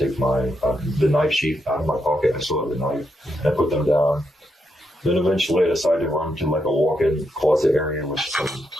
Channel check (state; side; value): normal; both; correlation 0.81